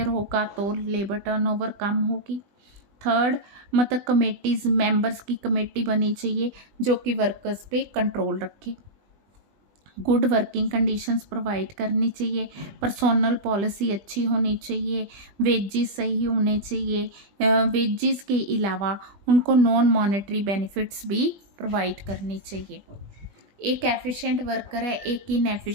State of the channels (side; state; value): left; late; 20 ms